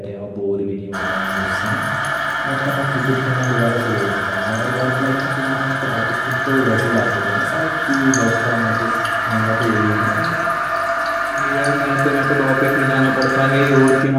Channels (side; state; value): both; identical; correlation 1.00